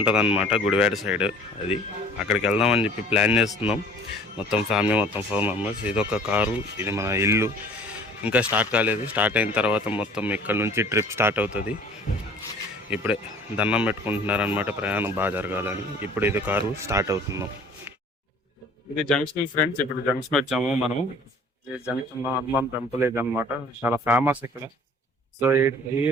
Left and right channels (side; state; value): both; normal; correlation 0.51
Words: అనమాట, గుడివాడ సైడ్. అది అక్కడికి వెళ్దామని చెప్పి ప్లాన్ చేస్తున్నాం. మొత్తం ఫ్యామిలీ, మొత్తం 4 మెంబర్స్. ఇది ఒక కారు, ఇది మన ఇల్లు. ఇంకా స్టార్ట్ కాలేదు. స్టార్ట్ అయిన తర్వాత మొత్తం ఇక్కడ నుంచి ట్రిప్ స్టార్ట్ అవుతుంది. ఇప్పుడే దండం పెట్టుకుంటున్నారనమాట, ప్రయాణం బాగా జరగాలని. ఇప్పుడు ఇది కారు స్టార్ట్ అవుతున్నాం. ఇది జంక్షన్ ఫ్రెండ్స్. ఇప్పుడు జంక్షన్ వచ్చాము మనం. ఈ జంక్షన్ లో హనుమాన్ టెంపుల్ ఇది అనమాట, చాలా ఫేమస్ ఇక్కడ. సో ఈ